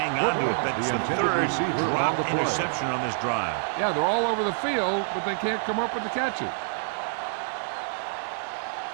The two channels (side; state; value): left; silent; 60 dB below the other